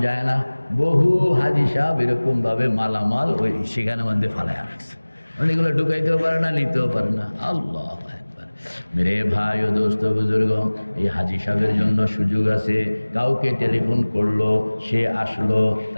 যায় না। বহু হাজী সাহেব এরকমভাবে মালামাল ওই সেখানে মধ্যে ফালায় রাখছে, অনেকগুলো ঢুকাইতেও পারে না, নিতেও পারে না। আল্লাহ মেরে ভাই ও দোস্ত বুজুর্গ, এই হাজী সাহেবের জন্য সুযোগ আছে। কাউকে টেলিফোন করলো, সে আসলো,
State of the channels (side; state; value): both; inverted; correlation -1.00